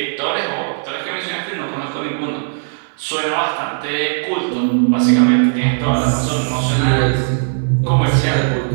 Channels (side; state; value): left; silent; 64 dB below the other